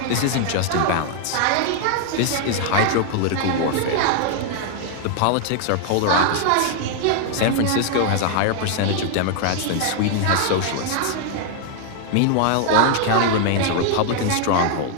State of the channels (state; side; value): different; both; correlation 0.00